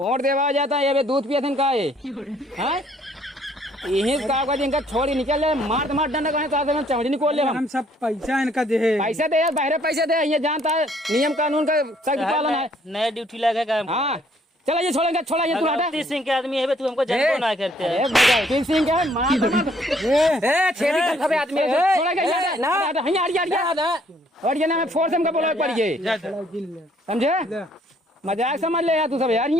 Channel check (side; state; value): both; normal; correlation 0.64